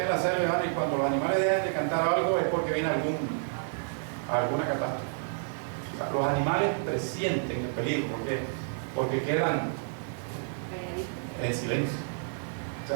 en la selva y cuando los animales dejan de cantar algo es porque viene alguna catástrofe. O sea, los animales presienten el peligro porque quedan en silencio. O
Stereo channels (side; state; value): left; silent; digital silence